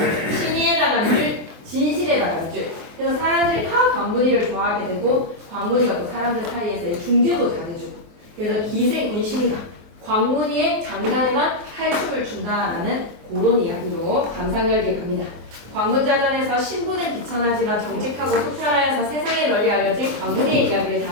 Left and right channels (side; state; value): left; late; 24 ms